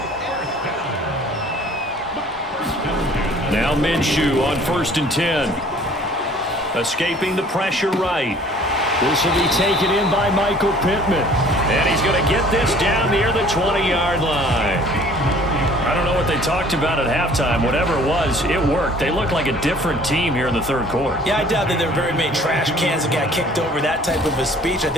Now Minshew on 1st and 10. Escaping the pressure right. This will be taken in by Michael Pittman. And he's going to get this down near the 20-yard line. I don't know what they talked about at halftime. Whatever it was, it worked. They looked like a different team here in the third quarter. Yeah, I doubt that there were very many trash cans that got kicked over, that type of a speech. I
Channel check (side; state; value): both; normal; correlation 0.52